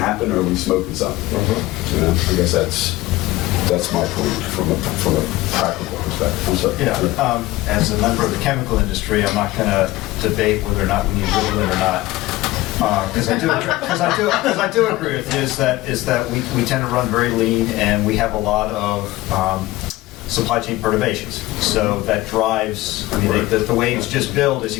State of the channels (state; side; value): quieter; right; 18.2 dB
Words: or are we smoking something? I guess that's my point from a practical perspective. I'm sorry. As a member of the chemical industry, I'm not going to debate whether or not we need Ritalin or not. Because I do agree with you is that we tend to run very lean, and we have a lot of supply chain perturbations. So that drives, the waves just build as